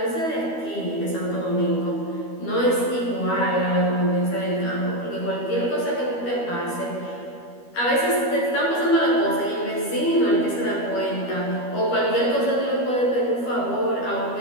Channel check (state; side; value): late; right; 12 ms